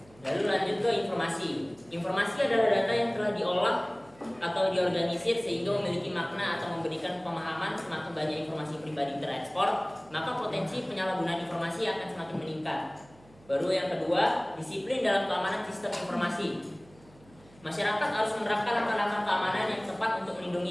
Lalu lanjut ke informasi. Informasi adalah data yang telah diolah atau diorganisir sehingga memiliki makna atau memberikan pemahaman. Semakin banyak informasi pribadi terekspor, maka potensi penyalahgunaan informasi akan semakin meningkat. Baru yang kedua, disiplin dalam keamanan sistem informasi. Masyarakat harus menerapkan langkah-langkah keamanan yang tepat untuk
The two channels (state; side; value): noise; right; hum, 26 dB below the sound